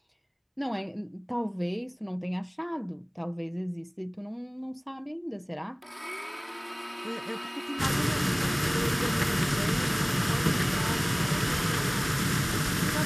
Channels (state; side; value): identical; both; correlation 1.00